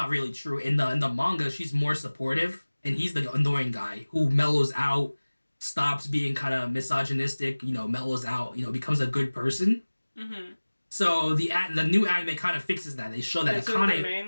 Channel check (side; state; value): both; inverted; correlation -1.00